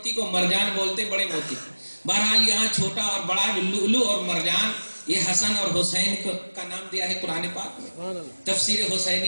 کو, مرجان بولتے ہیں بڑے موتی کو. بہرحال یہاں چھوٹا اور بڑا لؤلؤ اور مرجان یہ حسن اور حسین کا نام دیا ہے قرآن پاک میں. تفسیر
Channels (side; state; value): both; inverted; correlation -1.00